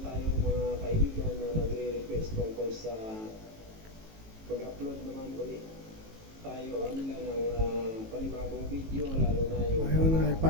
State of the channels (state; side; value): late; left; 18 ms